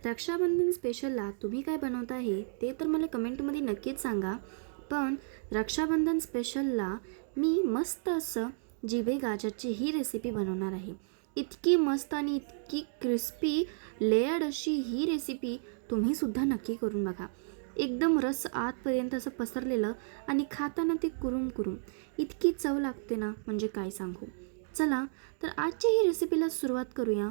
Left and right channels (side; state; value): left; silent; digital silence